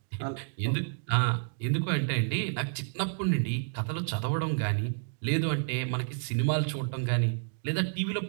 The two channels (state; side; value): silent; left; digital silence